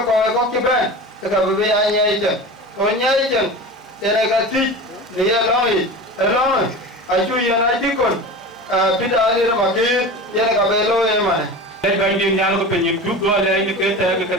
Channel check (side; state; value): both; normal; correlation 0.31